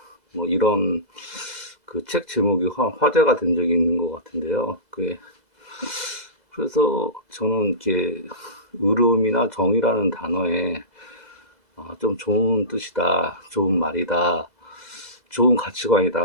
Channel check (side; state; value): left; late; 2.0 ms